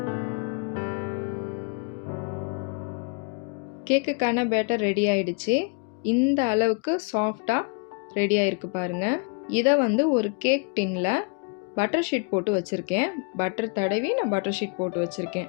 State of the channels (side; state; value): right; quieter; 34.4 dB